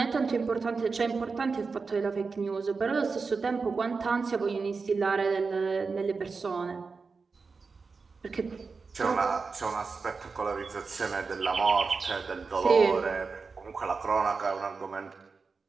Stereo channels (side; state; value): left; quieter; 4.6 dB